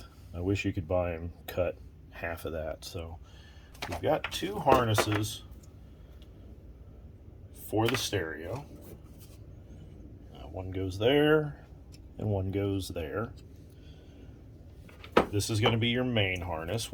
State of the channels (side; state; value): both; identical; correlation 1.00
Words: I wish you could buy them cut half of that. So we've got two harnesses for the stereo. One goes there and one goes there. This is going to be your main harness,